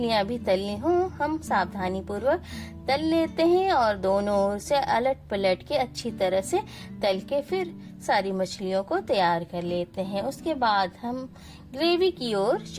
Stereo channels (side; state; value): both; identical; correlation 1.00